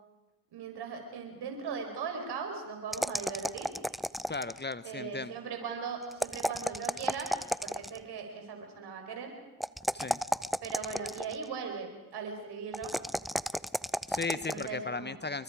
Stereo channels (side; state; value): both; normal; correlation 0.53